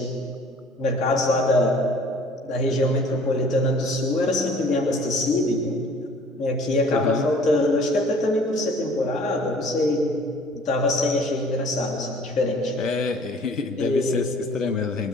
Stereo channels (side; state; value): both; normal; correlation 0.52